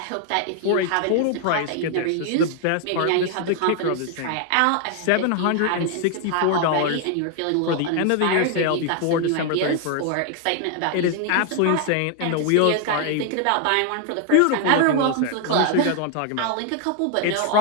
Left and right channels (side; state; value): both; different; correlation 0.00